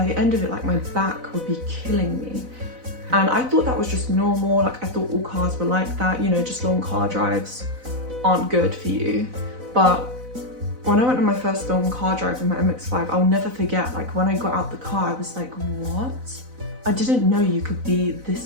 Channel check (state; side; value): late; left; 4.0 ms